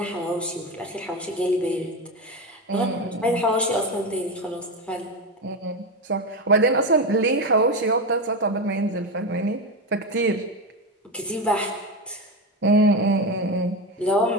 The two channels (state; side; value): normal; both; correlation 0.16